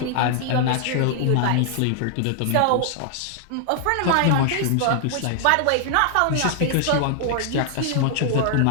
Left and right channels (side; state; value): both; different; correlation 0.00